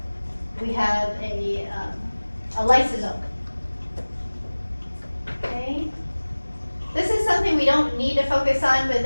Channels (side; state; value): both; inverted; correlation -1.00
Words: lysosome. Okay. This is something we don't need to focus on, but